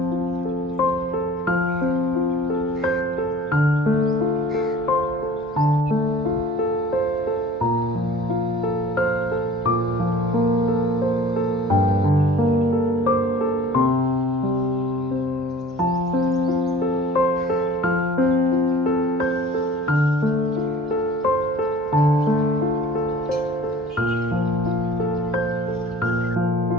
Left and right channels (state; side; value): normal; both; correlation 0.46